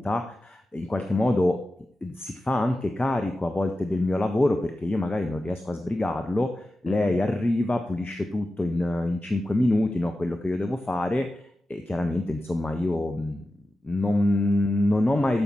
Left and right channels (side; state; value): both; normal; correlation 0.93